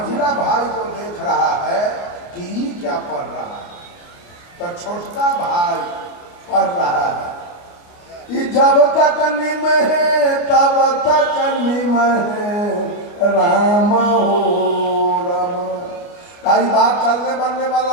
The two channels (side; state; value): right; late; 28 ms